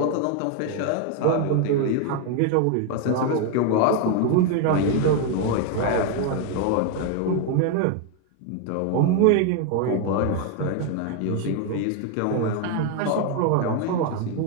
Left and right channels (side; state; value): both; different; correlation 0.01